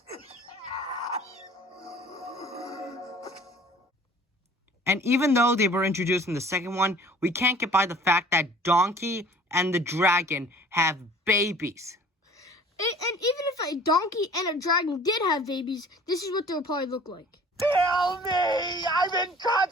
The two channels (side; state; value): both; normal; correlation 0.49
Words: And even though they were introduced in the second one, we can't get by the fact that Donkey and the dragon have babies. And even if a donkey and a dragon did have babies, this is what they would probably look like. Kill me! I'm in